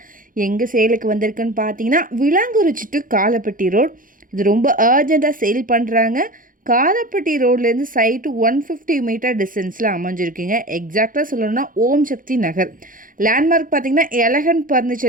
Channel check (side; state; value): left; late; 0.40 ms